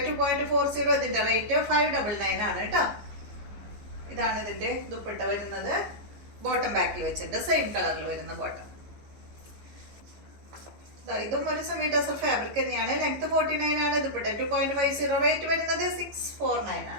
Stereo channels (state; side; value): late; left; 15 ms